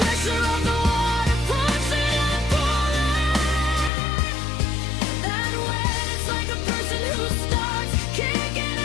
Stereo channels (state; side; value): drops out; right; at 3.9 s